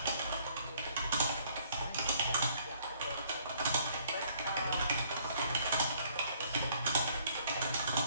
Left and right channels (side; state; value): both; inverted; correlation -0.63